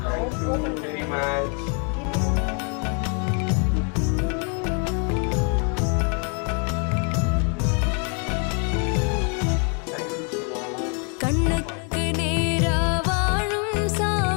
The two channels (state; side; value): quieter; right; 37.8 dB